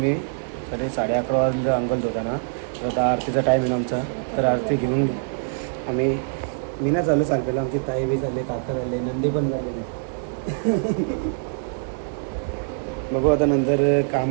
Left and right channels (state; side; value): silent; left; digital silence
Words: 11:30 वाजता अंगल होता ना. तर आता आरतीचा टाईम आहे आमचा. तर आरती घेऊन आम्ही मीना चालू सालपेला, आमची ताई बी झाली, काका झाले, नंदी पण झाले. बघू आता नंतर